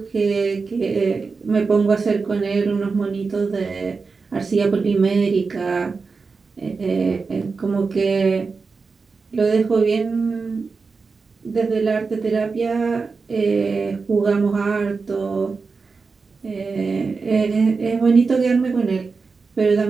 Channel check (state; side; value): quieter; left; 4.6 dB